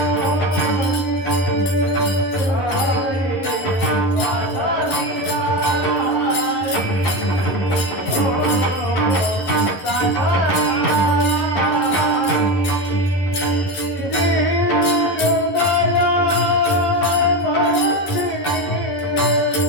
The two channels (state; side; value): late; right; 11 ms